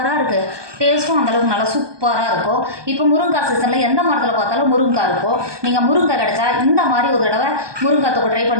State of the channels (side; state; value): left; late; 1.2 ms